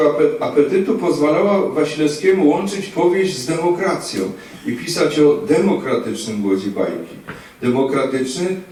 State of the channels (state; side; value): identical; both; correlation 1.00